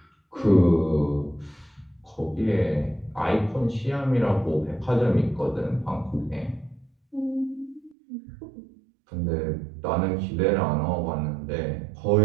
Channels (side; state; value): left; drops out; at 8.0 s